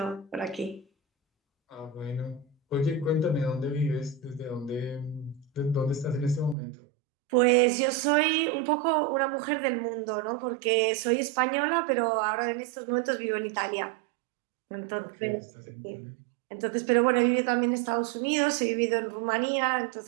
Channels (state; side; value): drops out; left; at 6.6 s